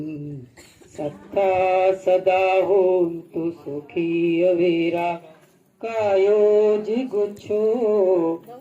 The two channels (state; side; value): identical; both; correlation 1.00